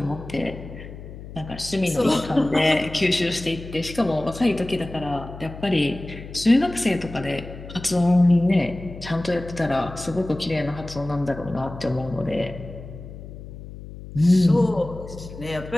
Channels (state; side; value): noise; left; hum, 13 dB below the sound